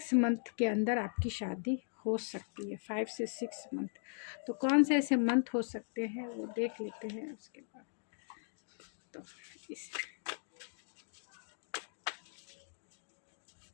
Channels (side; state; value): right; silent; digital silence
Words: मंथ के अंदर आपकी शादी हो सकती है। 5 से 6 मंथ। तो कौन से ऐसे मंथ हो सकते हैं वो देख लेते हैं उसके बाद। तो इस